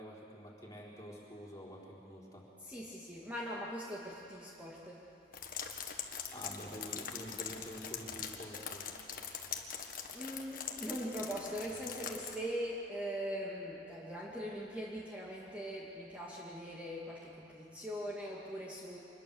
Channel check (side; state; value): both; normal; correlation 0.47